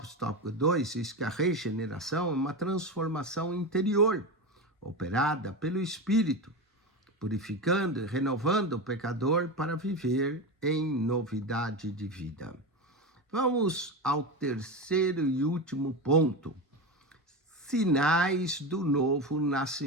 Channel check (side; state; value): both; normal; correlation 0.20